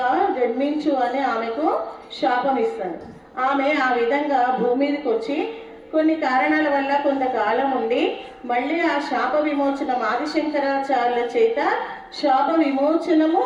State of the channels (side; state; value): both; identical; correlation 1.00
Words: జన్మించు అని ఆమెకు శాపం ఇస్తాడు. ఆమె ఆ విధంగా భూమి మీదకి వచ్చి కొన్ని కారణాల వల్ల కొంతకాలం ఉండి మళ్ళీ ఆ శాప విమోచనం ఆదిశంకరాచార్యుల చేత శాప విమోచనము